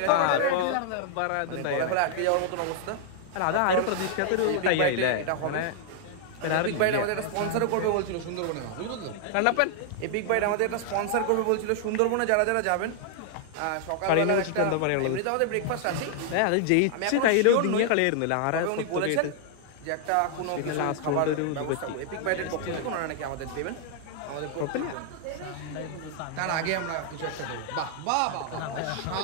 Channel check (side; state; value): both; different; correlation -0.01